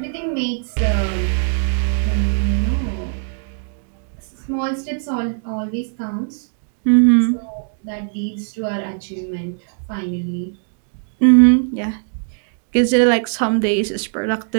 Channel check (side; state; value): left; silent; digital silence